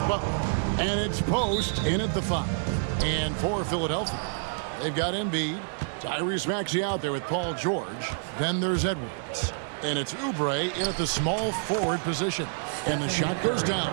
Butler. And it's Post in at the 5. And for Philadelphia, they've got Embiid, Tyrese Maxey out there with Paul George. Then there's Edwards. And it's Oubre in at the small forward position. And the shot goes down.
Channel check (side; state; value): left; silent; digital silence